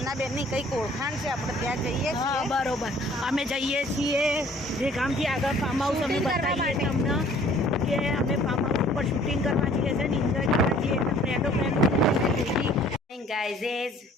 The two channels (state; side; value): normal; both; correlation 0.55